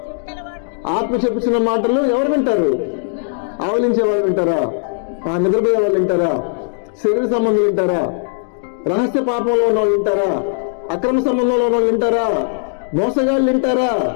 మాటలు ఎవరు వింటారు? ఆవలించే వాళ్ళు వింటారా? నిద్రపోయే వాళ్ళు వింటారా? శరీర సంబంధాలు వింటారా? రహస్య పాపంలో ఉన్న వాళ్ళు వింటారా? అక్రమ సంబంధంలో ఉన్న వాళ్ళు వింటారా? మోసగాళ్ళు వింటారా?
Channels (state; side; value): silent; right; digital silence